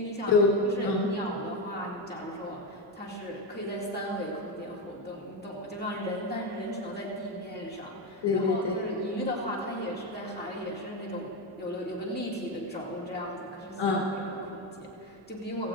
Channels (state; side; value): normal; both; correlation 0.12